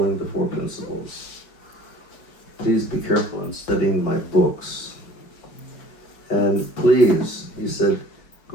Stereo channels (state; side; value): late; right; 4.7 ms